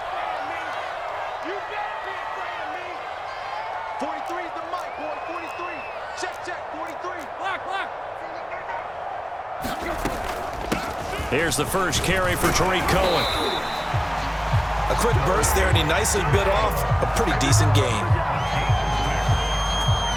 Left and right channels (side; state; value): both; identical; correlation 1.00